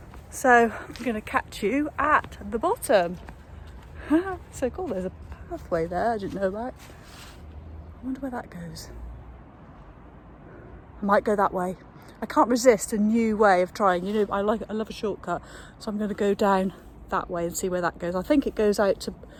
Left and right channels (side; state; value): both; identical; correlation 1.00